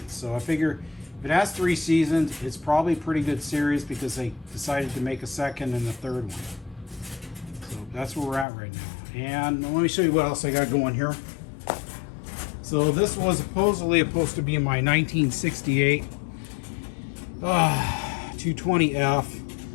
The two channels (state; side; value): drops out; right; at 8.5 s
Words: So I figure if it has 3 seasons, it's probably a pretty good series because they decided to make a second and a third one. So that's where we're at right now. And let me show you what else I got going here. So this was supposedly supposed to be my 1968 220F.